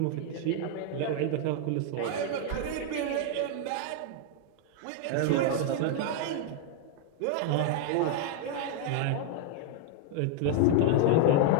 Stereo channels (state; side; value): different; both; correlation 0.00